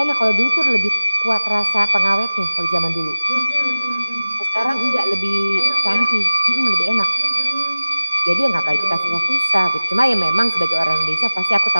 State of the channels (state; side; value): inverted; both; correlation -0.95